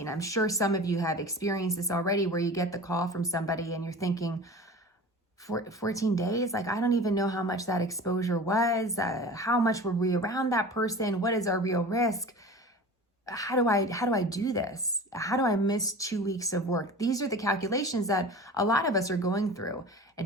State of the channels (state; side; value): normal; both; correlation 0.36